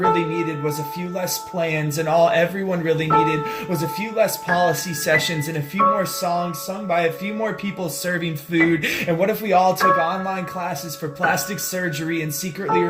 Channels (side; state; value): both; identical; correlation 1.00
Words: needed was a few less plans, and all everyone really needed was a few less policy sessions and a few more songs sung by a few more people serving food? And what if we all took online classes for plastic surgery and secretly